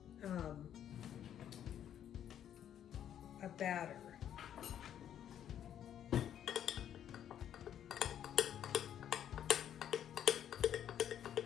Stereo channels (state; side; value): quieter; right; 10.0 dB